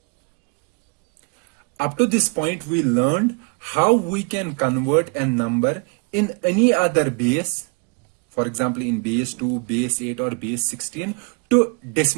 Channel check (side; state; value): left; quieter; 33.9 dB